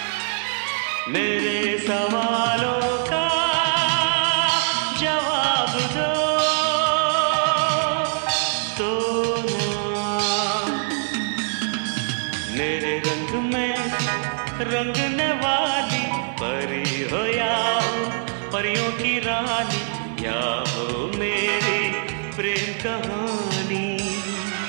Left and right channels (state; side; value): silent; left; 63 dB below the other